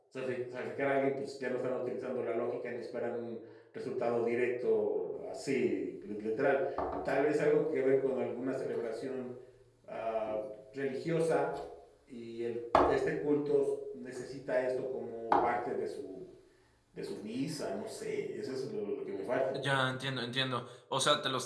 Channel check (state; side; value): identical; both; correlation 1.00